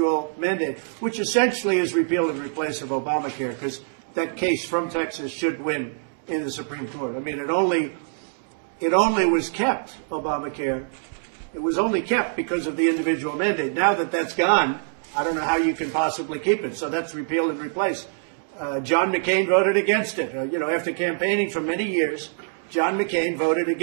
mandate, which essentially is repeal and replace of Obamacare, because that case from Texas should win in the Supreme Court. I mean, it only was kept, Obamacare. It was only kept because of the individual mandate. Now that that's gone, I don't know how you can possibly keep it. So that's repeal and replace. John McCain voted against it. You know, after campaigning for many years, John McCain voted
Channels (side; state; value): left; silent; digital silence